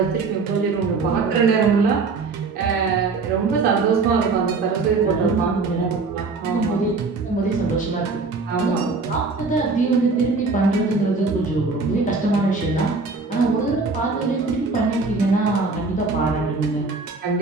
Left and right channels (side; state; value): left; quieter; 4.1 dB